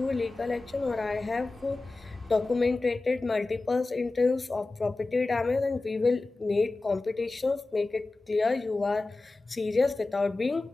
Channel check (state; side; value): quieter; right; 3.3 dB